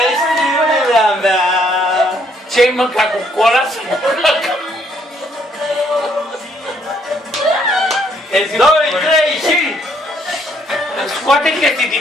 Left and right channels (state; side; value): normal; both; correlation 0.68